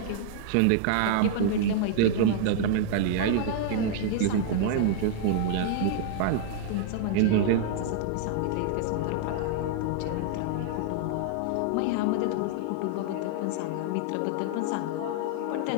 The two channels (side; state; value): both; different; correlation 0.00